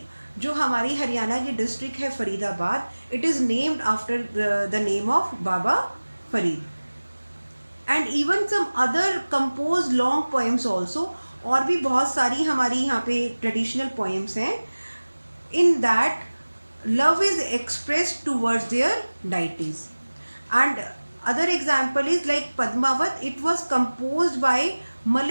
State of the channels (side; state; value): both; inverted; correlation -1.00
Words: जो हमारी हरियाणा की district है Faridabad, it is named after the name of Baba Farid. And even some other compose long poems also, और भी बहुत सारी हमारी यहाँ पे ट्रेडिशनल पोएम्स हैं. In that love is expressed towards their deities. And other example is like Padmavat. It was composed by